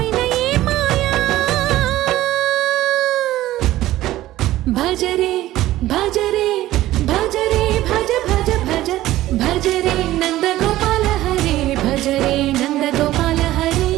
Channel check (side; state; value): left; quieter; 15.4 dB